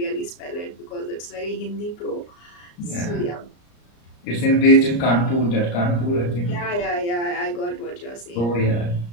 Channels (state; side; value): late; right; 34 ms